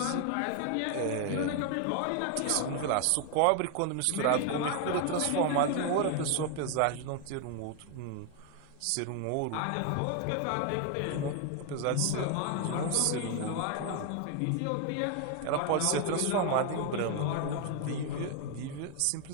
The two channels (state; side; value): different; both; correlation 0.01